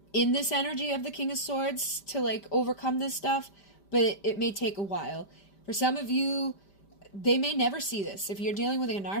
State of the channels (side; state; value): right; late; 5.1 ms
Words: in this energy of the King of Swords to like overcome this stuff, but it may take a while. For some of you, they may never see this. If you're dealing with a